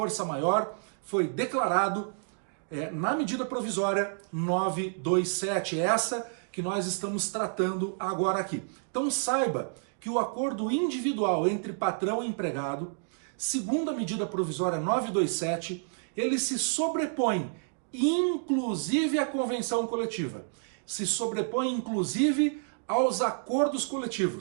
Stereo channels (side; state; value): left; silent; digital silence